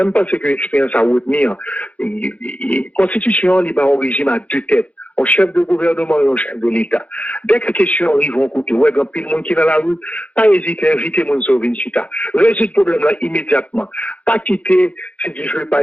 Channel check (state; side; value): late; right; 0.066 ms